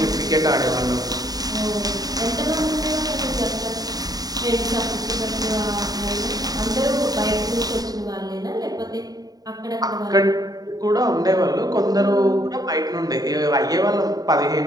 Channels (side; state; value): left; late; 0.18 ms